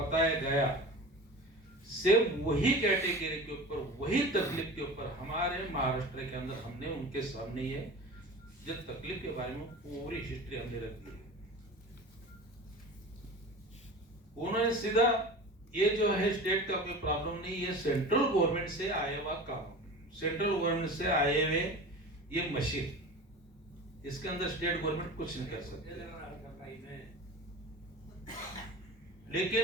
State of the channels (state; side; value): normal; both; correlation 0.34